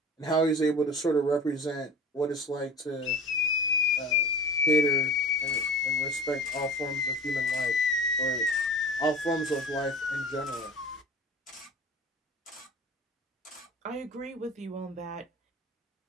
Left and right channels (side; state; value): both; normal; correlation 0.37